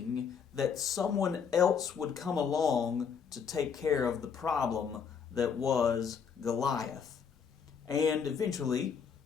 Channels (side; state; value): right; quieter; 6.8 dB